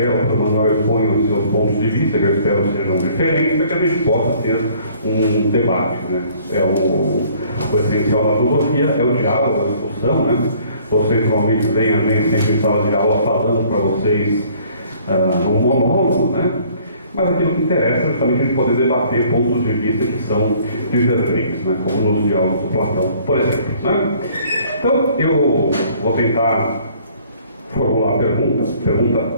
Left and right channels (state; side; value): inverted; both; correlation -0.57